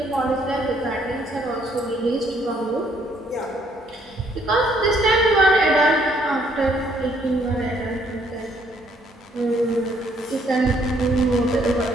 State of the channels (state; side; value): normal; both; correlation 0.67